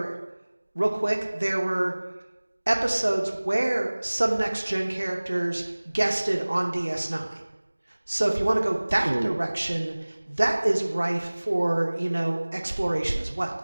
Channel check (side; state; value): both; inverted; correlation -1.00